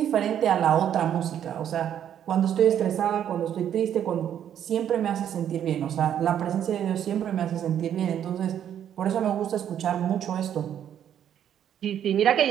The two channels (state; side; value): quieter; left; 9.8 dB